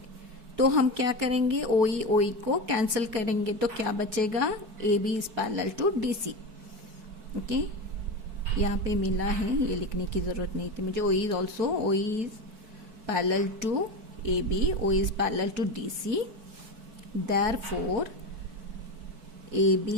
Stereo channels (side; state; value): left; late; 4.6 ms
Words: तो हम क्या करेंगे, OE को कैंसिल करेंगे तो क्या बचेगा, AB is parallel to DC। Okay, यहाँ पे मिला है, ये लिखने की जरूरत नहीं थी मुझे। OE is parallel to AB, OE is parallel to DC, therefore AB